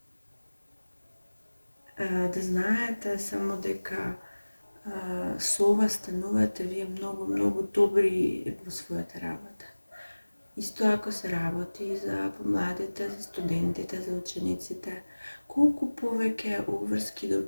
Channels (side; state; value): both; inverted; correlation -1.00